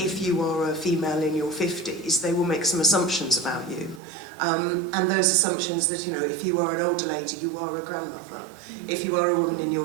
you are a female in your 50s, they will make some assumptions about you. And those assumptions that, if you are an older lady, you are a grandmother. If you are a woman in your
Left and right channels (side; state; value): left; drops out; at 4.0 s